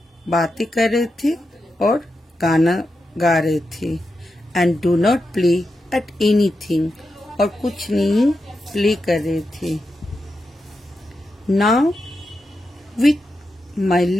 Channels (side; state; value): both; normal; correlation 0.88